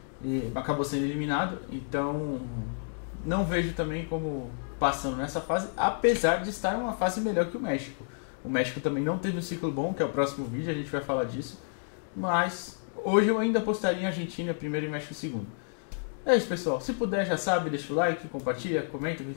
E acabou sendo eliminado. Então, não vejo também como passando nessa fase, apesar de estar em uma fase melhor que o México. O México também não teve um ciclo bom, que é o próximo vídeo, a gente vai falar disso. Mas hoje eu ainda apostaria em Argentina primeiro e México segundo. É isso, pessoal. Se puder, já sabe, deixa o like, compartilha, comenta o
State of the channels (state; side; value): silent; right; digital silence